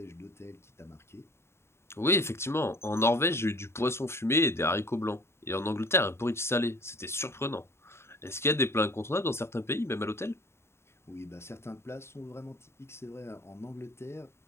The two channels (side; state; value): right; late; 0.12 ms